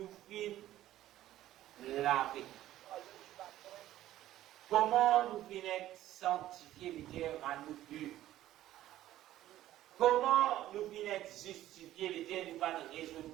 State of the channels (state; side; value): quieter; left; 13.8 dB